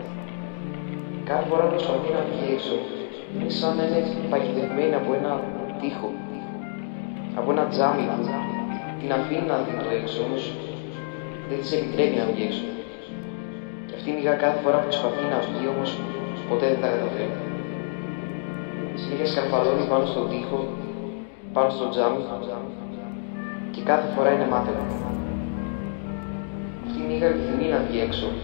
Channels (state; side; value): silent; right; 61 dB below the other